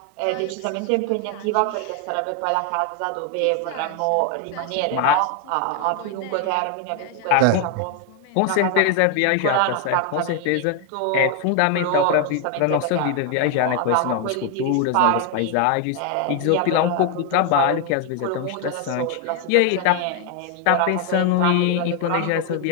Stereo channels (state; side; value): different; both; correlation 0.01